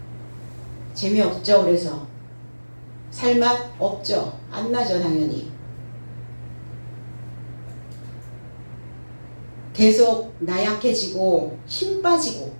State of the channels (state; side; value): inverted; both; correlation -1.00